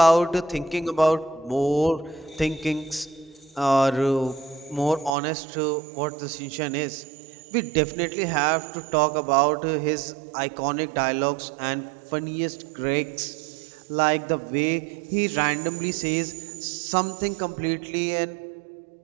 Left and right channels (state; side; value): drops out; left; at 5.1 s